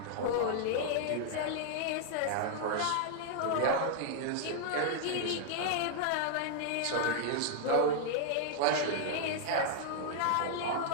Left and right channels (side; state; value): both; different; correlation 0.00